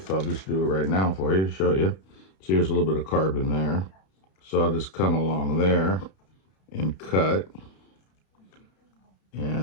I'll just do it right now for you to show you. So here's a little bit of carbon there. So I'll just come along there and cut.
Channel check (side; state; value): right; late; 31 ms